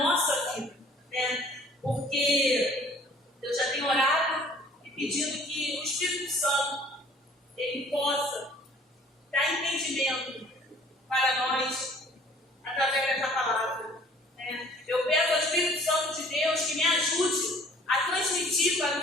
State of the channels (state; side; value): normal; both; correlation 0.53